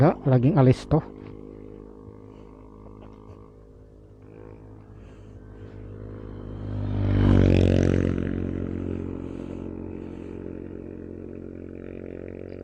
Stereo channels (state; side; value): identical; both; correlation 1.00